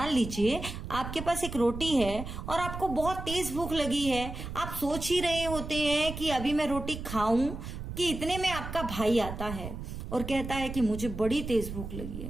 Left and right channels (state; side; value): noise; right; rumble, 8 dB below the sound